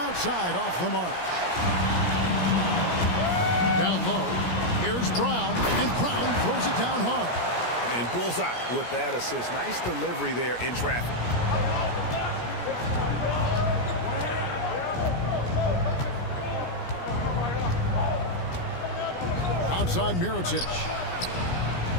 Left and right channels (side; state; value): right; late; 17 ms